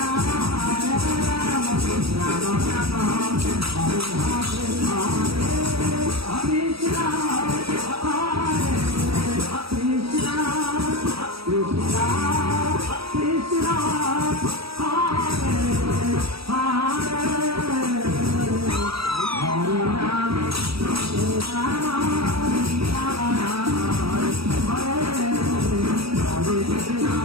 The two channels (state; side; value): late; left; 0.76 ms